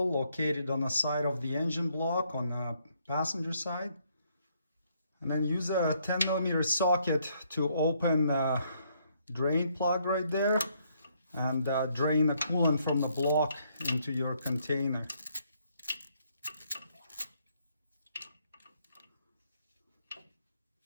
located on the side of the engine block on the passenger side. And then use a 10 millimeter socket to open the drain plug right there and drain the coolant from the block into your container.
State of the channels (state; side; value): inverted; both; correlation -0.70